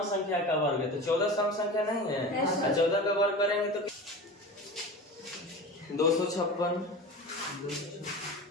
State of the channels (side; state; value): both; normal; correlation 0.32